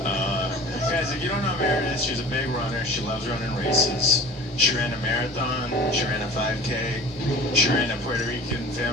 Guys, if you don't know Meredith, she's a big runner. She loves running races. She ran a marathon. She ran a 5K. She ran a Puerto Rican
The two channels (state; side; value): normal; both; correlation 0.41